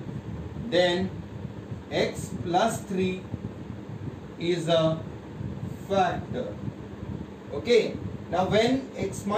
then x plus 3 is a factor. Okay. Now when x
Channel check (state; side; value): identical; both; correlation 1.00